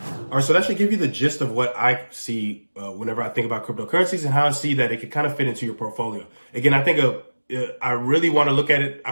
right. So that should give you the gist of what I see whenever I think about cryptocurrencies and how I see that it can kind of fit into your portfolio. Again, I think I really want to look at it.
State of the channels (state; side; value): inverted; both; correlation -1.00